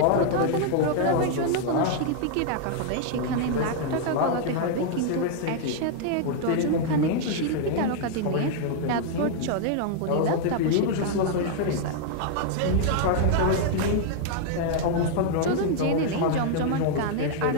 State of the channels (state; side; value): different; both; correlation 0.00